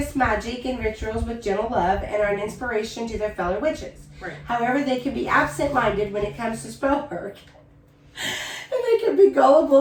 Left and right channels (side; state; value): both; identical; correlation 1.00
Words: magic and rituals with gentle love, and are an inspiration to their fellow witches. Right. However, they can be absent-minded when it comes to spell work. And they can be